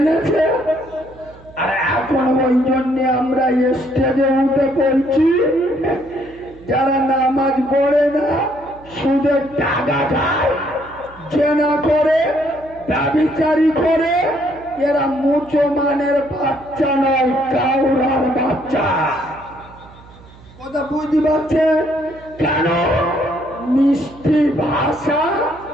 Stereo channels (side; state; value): right; noise; hum, 22 dB below the sound